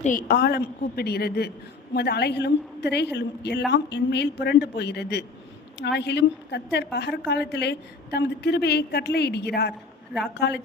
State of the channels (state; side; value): quieter; right; 4.0 dB